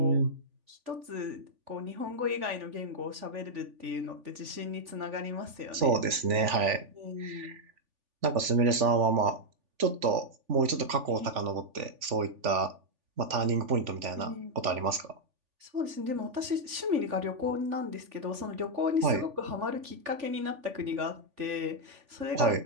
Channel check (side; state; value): left; late; 3.4 ms